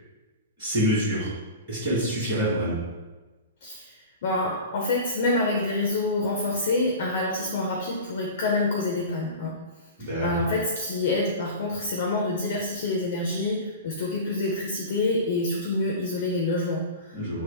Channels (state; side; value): inverted; both; correlation -0.32